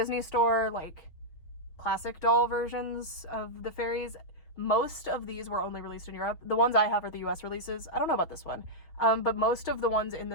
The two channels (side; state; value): right; late; 5.8 ms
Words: Store, like, classic doll versions of the fairies. Most of these were only released in Europe. The ones I have are the US releases. I don't know about this one. But most of the ones in